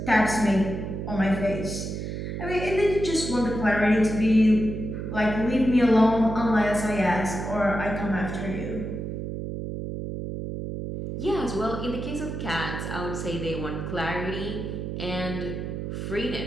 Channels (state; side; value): noise; right; hum, 5 dB below the sound